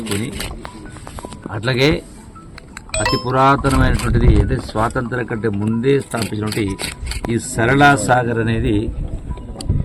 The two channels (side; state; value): both; identical; correlation 1.00